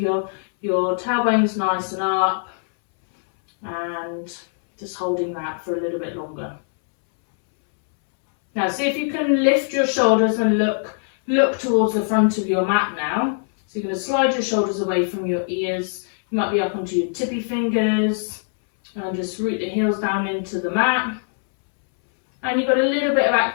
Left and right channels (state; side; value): silent; right; 65 dB below the other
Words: your tailbone's nice and up, and just holding that for a little bit longer. Now see if you can lift your shoulders and look towards the front of your mat now. So you're going to slide your shoulders away from your ears. You might be up onto your tippy fingers, and just root the heels down into the mat. And you've got a little bit of